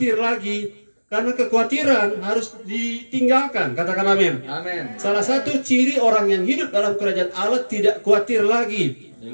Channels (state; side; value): inverted; both; correlation -1.00